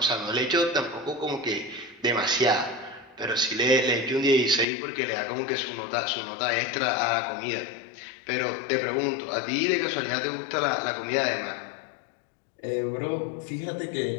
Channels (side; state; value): right; drops out; at 4.7 s